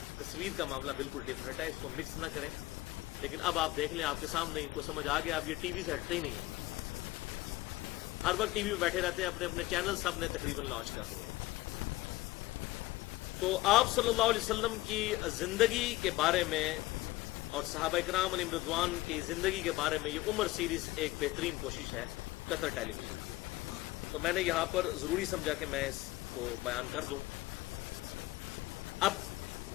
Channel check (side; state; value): right; quieter; 18.7 dB